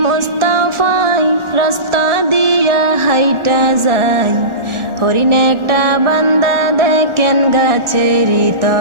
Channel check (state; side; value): late; left; 1.4 ms